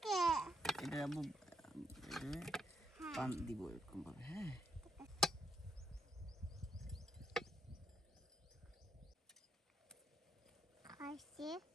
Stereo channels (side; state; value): both; normal; correlation 0.78